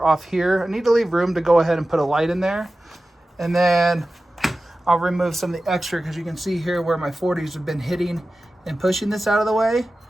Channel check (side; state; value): both; normal; correlation 0.95